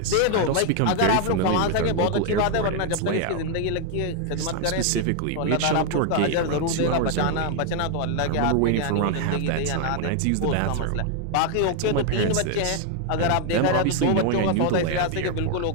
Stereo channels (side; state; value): both; different; correlation 0.00